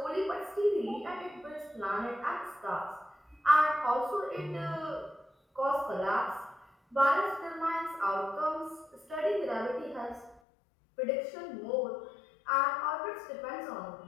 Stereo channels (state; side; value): drops out; right; at 10.4 s